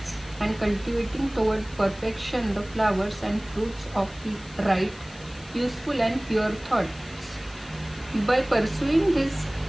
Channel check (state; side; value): noise; left; hiss, 21 dB below the sound